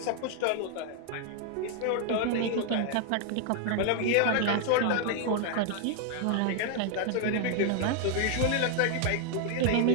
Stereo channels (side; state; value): both; different; correlation 0.00